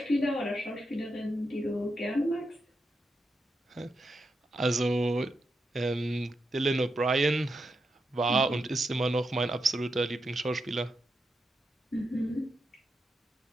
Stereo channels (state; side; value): normal; both; correlation 0.86